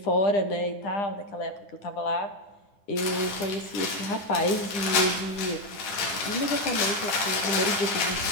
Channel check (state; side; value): late; right; 10 ms